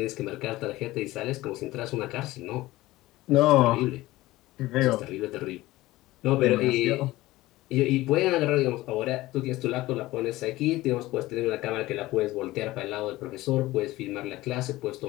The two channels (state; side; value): quieter; right; 17.9 dB